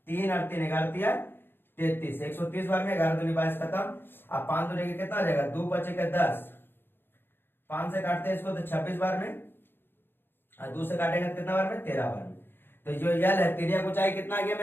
3 और 3 11 33, 130 बार में 11 दूनी 22 खत्म। अब 5 दूनी के कितना आ जाएगा 2 बचे के 10, 5 से काटते हैं इसको तो 26 बार में, और 2 से काटेंगे तो कितना बार में 13 बार में। तो जो यल है तिर्यक ऊंचाई कितना आ गया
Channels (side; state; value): right; late; 0.10 ms